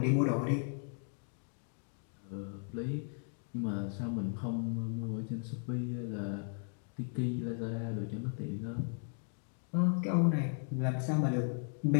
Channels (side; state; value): right; silent; 54 dB below the other